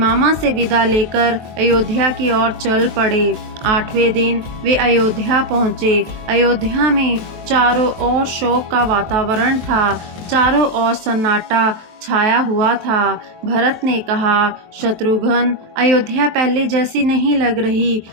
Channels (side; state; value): left; late; 23 ms